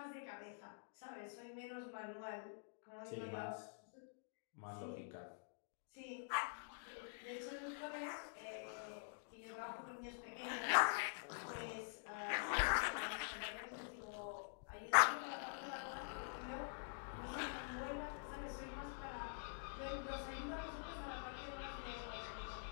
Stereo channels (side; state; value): right; silent; digital silence